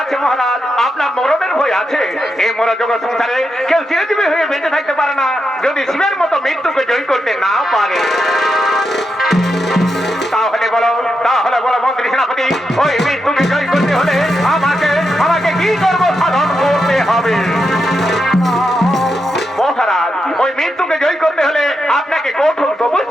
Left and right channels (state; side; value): normal; both; correlation 0.85